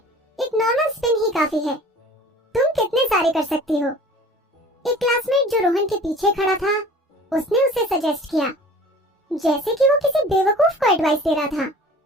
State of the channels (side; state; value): both; normal; correlation 0.45